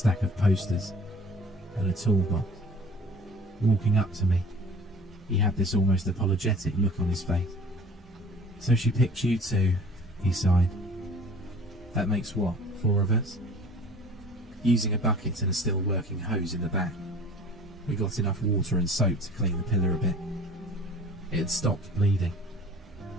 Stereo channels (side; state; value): both; normal; correlation 0.47